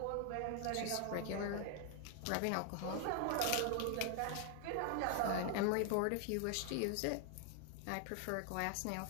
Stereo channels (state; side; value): different; both; correlation 0.00